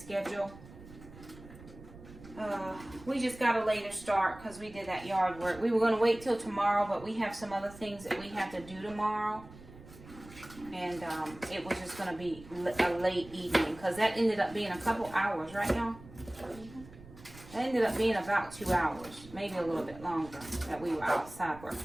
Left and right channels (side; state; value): right; noise; rumble, 18 dB below the sound